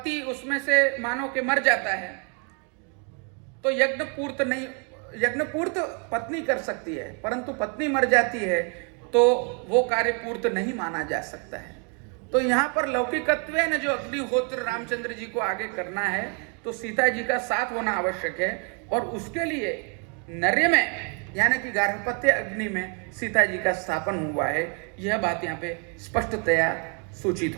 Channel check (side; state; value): left; quieter; 34.9 dB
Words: उसमें से मानो के मर जाता है तो यज्ञ पूर्त पत्नी कर सकती है, परंतु पत्नी मर जाती है तो वो कार्य पूर्त नहीं माना जा सकता है। तो यहाँ पर लौकिकत्व न जो अग्निहोत्र रामचंद्र जी को आगे करना है तो सीता जी का साथ होना आवश्यक है, और उसके लिए नर्य में यानी कि गार्हपत्य अग्नि में सीता जी का स्थापन हुआ है। यह बात यहाँ पे स्पष्टतया सूचित